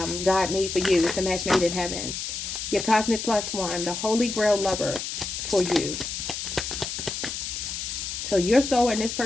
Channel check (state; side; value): noise; left; hiss, 5 dB below the sound